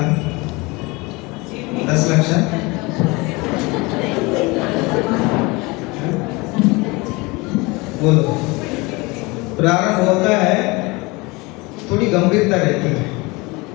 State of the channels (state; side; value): quieter; right; 24.9 dB